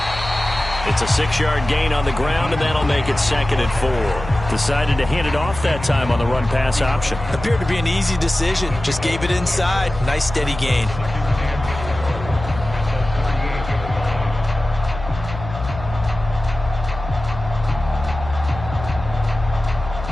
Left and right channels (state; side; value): noise; left; hum, 11 dB below the sound